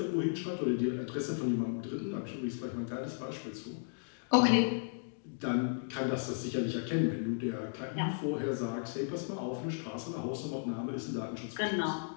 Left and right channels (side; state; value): right; silent; digital silence